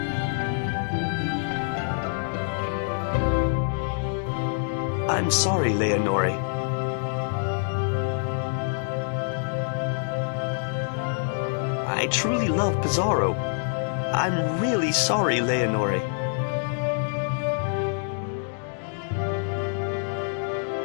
I'm sorry, Leonore. I truly love Pizarro. I'm really sorry, Leonore.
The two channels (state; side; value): silent; right; digital silence